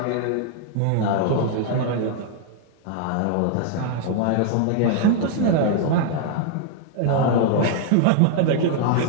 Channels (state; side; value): different; both; correlation 0.00